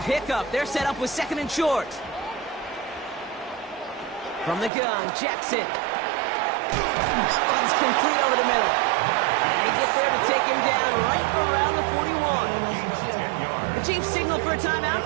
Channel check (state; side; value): drops out; left; at 4.7 s